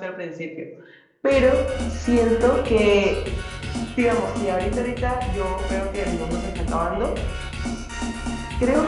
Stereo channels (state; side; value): identical; both; correlation 1.00